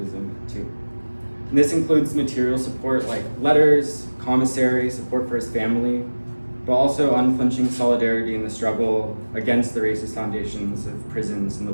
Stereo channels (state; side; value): inverted; both; correlation -1.00